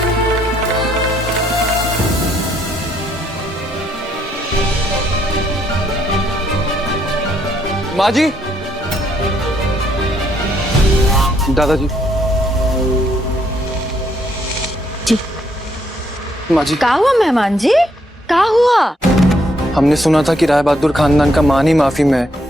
माँ जी, दादाजी, जी माँ जी, क्या हुआ मेहमान जी, क्या हुआ? हमने सुना था कि राय बहादुर खानदान का मान ही माफी में है,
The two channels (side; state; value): both; normal; correlation 0.72